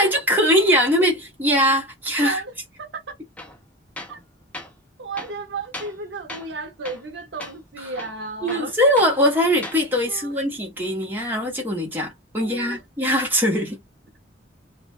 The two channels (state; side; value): normal; both; correlation 0.22